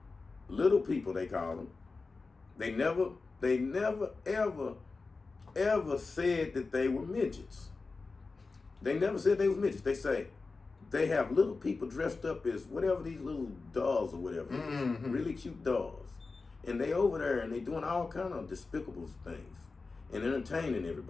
they call them. They never ever said that they were midgets. They never said they was midgets. They say they have little people dressed up as whatever, these little dolls or whatever, really cute dolls. And they over there and they doing all kind of despicable things and entertaining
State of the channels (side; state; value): right; quieter; 4.0 dB